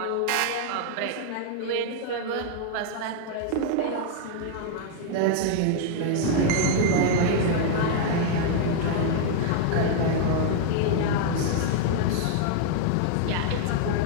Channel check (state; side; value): different; both; correlation 0.00